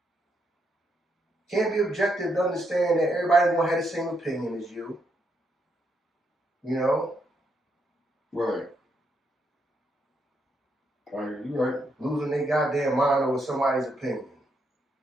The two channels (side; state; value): both; normal; correlation 0.78